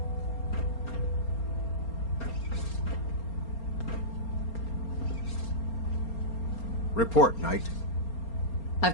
Report, Knight. I've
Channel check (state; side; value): late; right; 4.3 ms